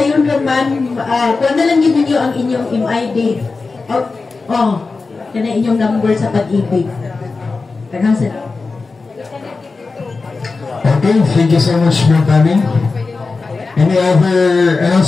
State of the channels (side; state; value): right; quieter; 4.1 dB